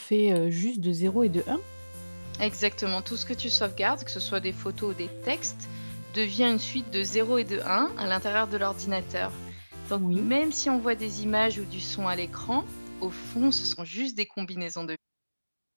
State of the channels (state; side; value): inverted; both; correlation -1.00